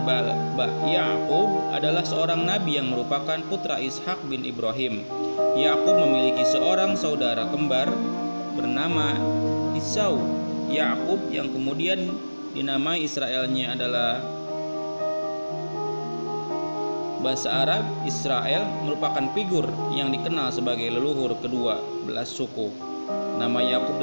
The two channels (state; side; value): inverted; both; correlation -1.00